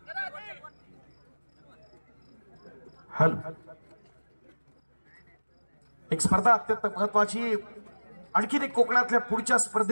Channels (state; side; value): inverted; both; correlation -1.00